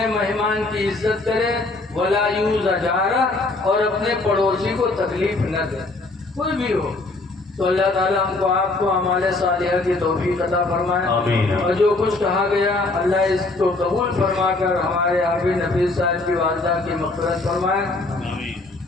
مہمان کی عزت کرے، ولا یؤذ جارہ، اور اپنے پڑوسی کو تکلیف نہ دے، کوئی بھی ہو۔ تو اللہ تعالیٰ ہم کو آپ کو اعمال صالحہ کی توفیق عطا فرمائے، آمین۔ اور جو کچھ کہا گیا اللہ اس کو قبول فرما کر ہمارے حافظ نفیس صاحب کی والدہ کی مغفرت فرمائے۔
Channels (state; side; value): quieter; right; 3.2 dB